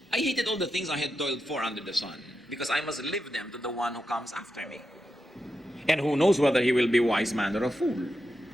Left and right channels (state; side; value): normal; both; correlation 0.88